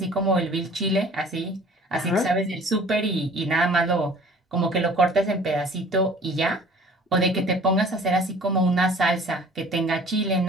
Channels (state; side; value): normal; both; correlation 0.48